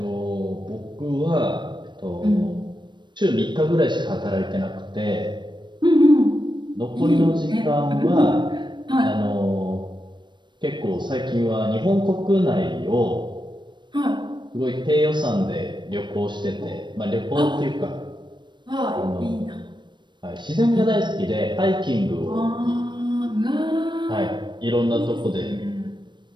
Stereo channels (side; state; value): left; late; 0.22 ms